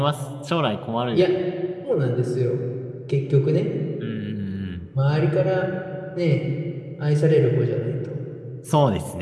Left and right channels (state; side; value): identical; both; correlation 1.00